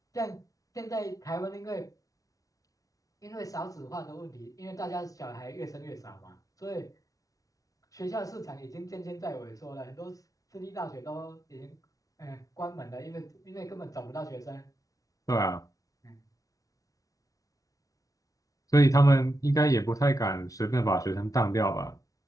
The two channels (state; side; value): late; right; 0.17 ms